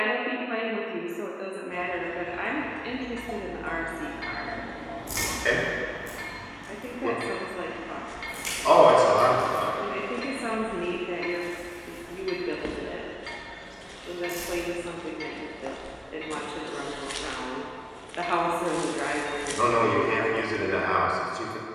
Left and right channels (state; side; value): identical; both; correlation 1.00